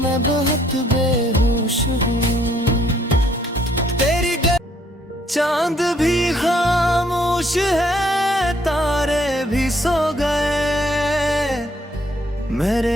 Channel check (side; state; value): both; normal; correlation 0.67